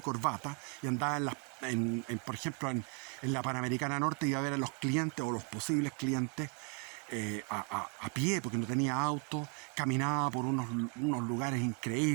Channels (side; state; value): left; quieter; 38.2 dB